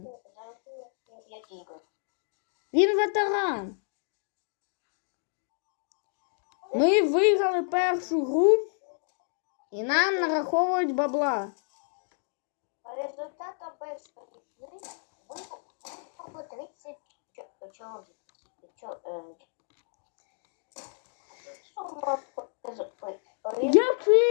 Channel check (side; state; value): right; silent; digital silence